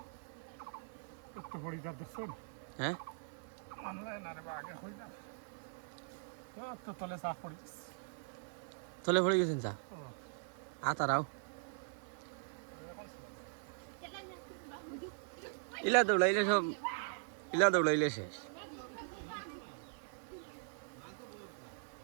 একটু পড়ি যা দেখছন হ্যাঁ মানলে না রে আগে হই না তো তলে শাক পড়ি তলে পড়ে গেছেন চা তারাও ইলা দৌড়াইলে সব ইলা দৌড়াইলে শেষ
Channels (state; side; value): silent; left; 51 dB below the other